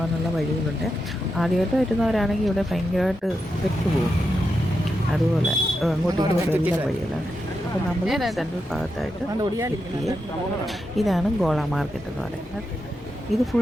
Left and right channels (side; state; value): both; normal; correlation 0.86